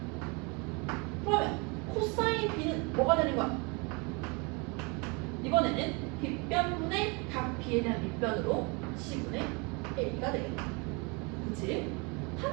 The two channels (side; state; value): left; quieter; 30.3 dB